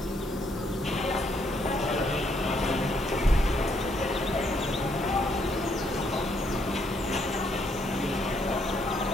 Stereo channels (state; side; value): normal; both; correlation 0.72